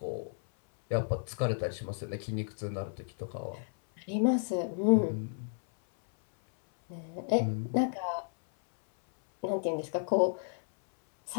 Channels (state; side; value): silent; right; 56 dB below the other